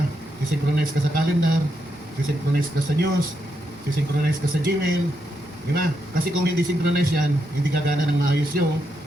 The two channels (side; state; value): both; normal; correlation 0.82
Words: Isi-synchronize ka sa calendar, isi-synchronize ka sa news, isi-synchronize ka sa Gmail, di ba? Kasi kung hindi synchronize yan, hindi gagana ng maayos yung